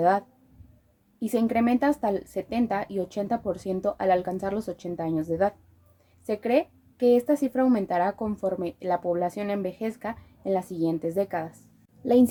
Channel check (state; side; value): identical; both; correlation 1.00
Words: y se incrementa hasta el 70 y 80% al alcanzar los 80 años de edad. Se cree que esta cifra aumentará conforme la población envejezca en las siguientes décadas. La